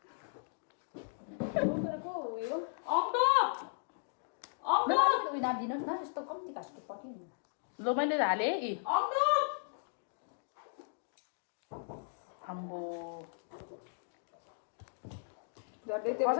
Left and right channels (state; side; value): silent; right; digital silence